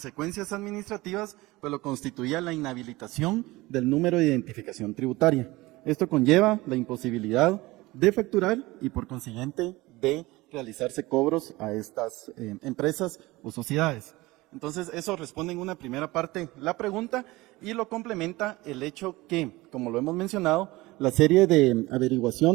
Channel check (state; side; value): quieter; left; 20.5 dB